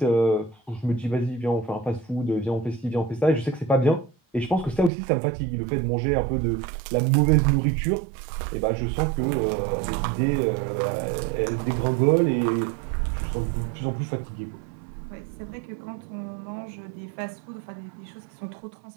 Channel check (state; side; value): drops out; left; at 4.9 s